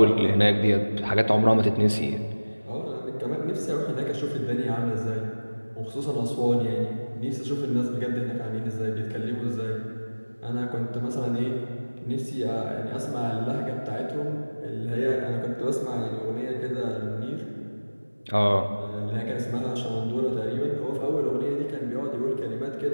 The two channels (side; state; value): both; inverted; correlation -1.00